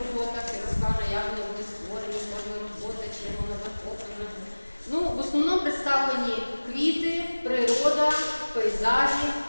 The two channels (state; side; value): inverted; both; correlation -1.00